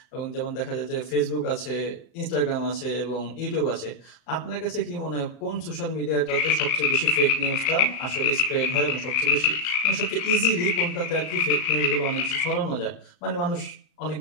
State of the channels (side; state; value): right; late; 35 ms